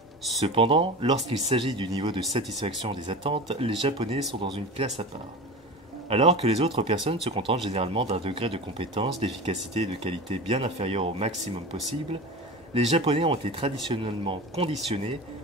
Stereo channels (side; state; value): both; normal; correlation 0.30